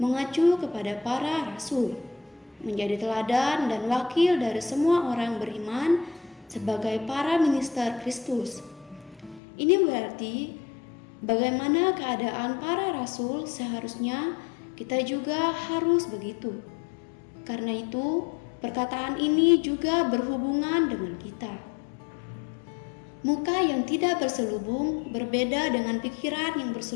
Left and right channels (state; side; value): drops out; right; at 9.4 s